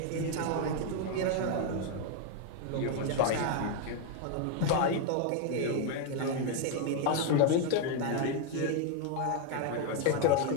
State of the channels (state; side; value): different; both; correlation 0.01